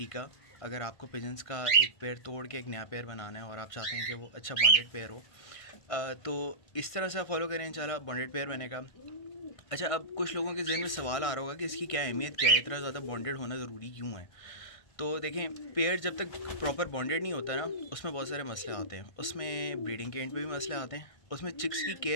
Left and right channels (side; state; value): right; late; 1.6 ms